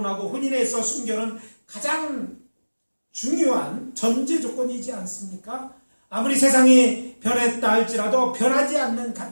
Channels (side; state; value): both; inverted; correlation -1.00